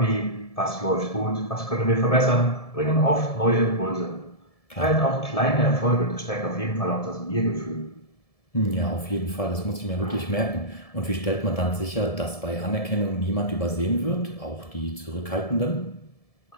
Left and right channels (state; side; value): late; right; 1.7 ms